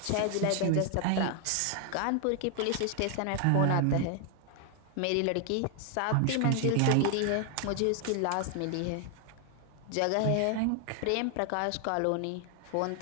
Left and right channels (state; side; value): different; both; correlation 0.00